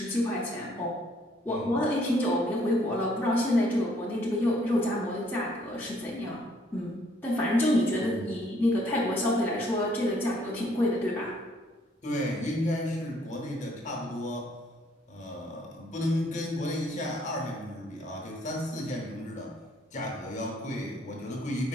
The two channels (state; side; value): normal; both; correlation 0.64